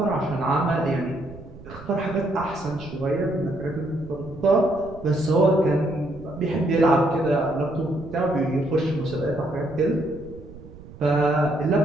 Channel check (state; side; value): noise; right; rumble, 17 dB below the sound